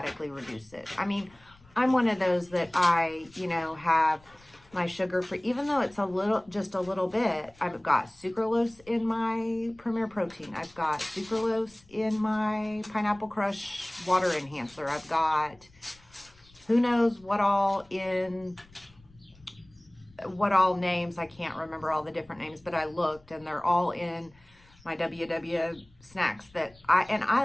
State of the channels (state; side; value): noise; left; rumble, 28 dB below the sound